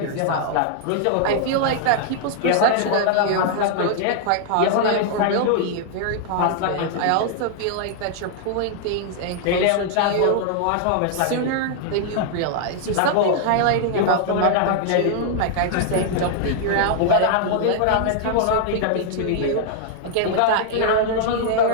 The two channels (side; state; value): both; different; correlation -0.01